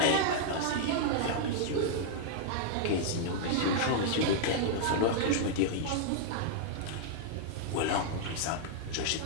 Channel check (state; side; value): different; both; correlation -0.01